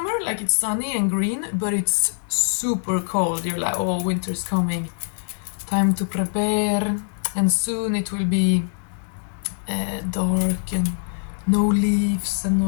like it's sunny and green, but it's super cold. You're like, oh, winter's coming. Time to prepare. And soon it will be dark and no leaves and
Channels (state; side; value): silent; right; digital silence